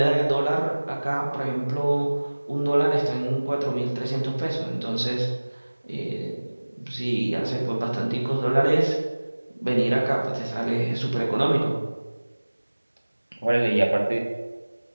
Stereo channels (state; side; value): inverted; both; correlation -1.00